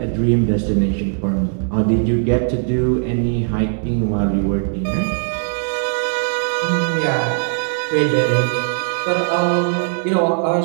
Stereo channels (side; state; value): left; silent; 64 dB below the other